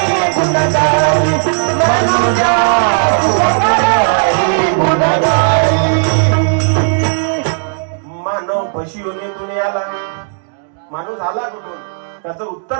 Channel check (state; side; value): silent; left; digital silence